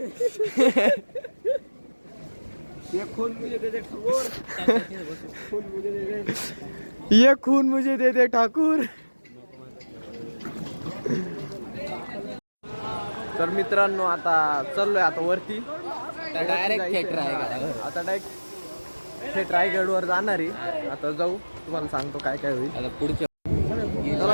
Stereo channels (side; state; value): both; inverted; correlation -1.00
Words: ये खून मुझे दे दे ठाकूर तर मित्रांनो आता चाललोय आता वरती डायरेक्ट आता डायरेक्ट थेट रायगडवर जाणार आहे आता जाऊ तुम्हाला सांगतो काय काय होईल आता पुढच्या